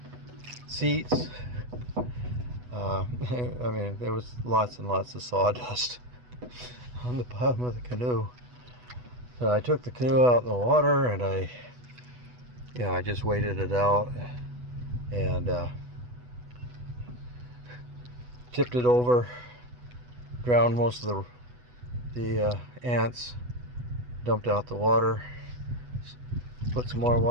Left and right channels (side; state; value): left; late; 8.1 ms